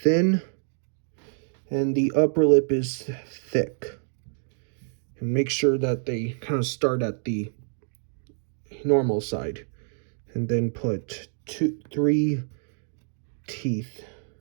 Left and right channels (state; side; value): silent; left; 60 dB below the other